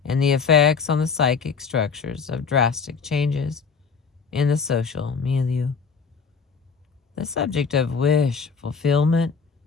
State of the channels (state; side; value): quieter; right; 5.5 dB